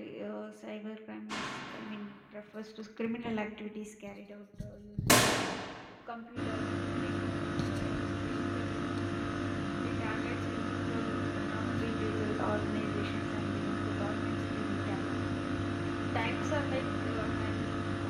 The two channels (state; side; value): identical; both; correlation 1.00